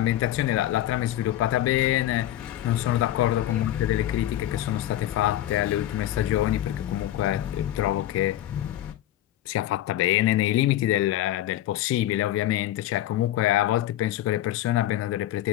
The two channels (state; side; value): quieter; right; 13.3 dB